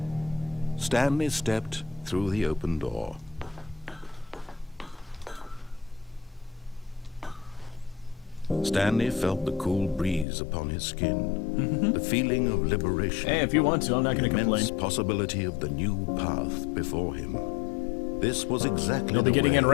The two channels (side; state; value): right; drops out; at 10.2 s